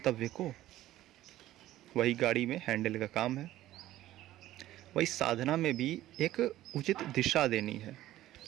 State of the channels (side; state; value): left; quieter; 14.5 dB